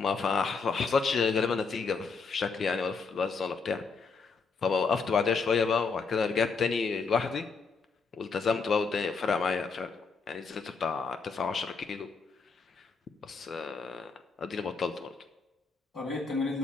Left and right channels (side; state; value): right; quieter; 4.9 dB